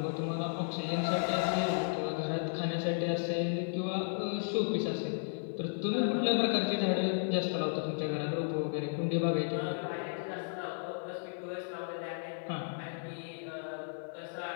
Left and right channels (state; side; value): silent; right; digital silence